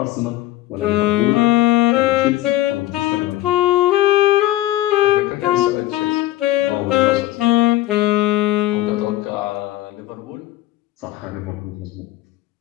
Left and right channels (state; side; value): quieter; right; 15.9 dB